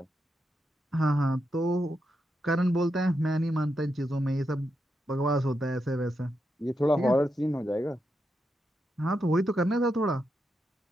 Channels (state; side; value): normal; both; correlation 0.85